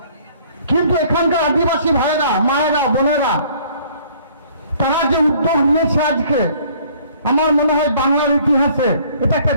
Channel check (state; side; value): inverted; both; correlation -0.57